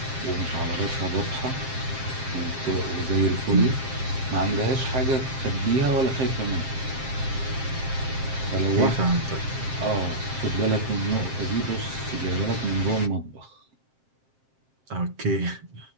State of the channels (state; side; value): late; left; 7.5 ms